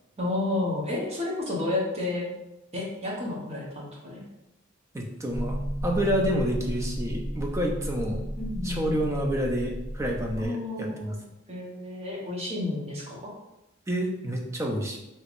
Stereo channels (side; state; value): both; normal; correlation 0.56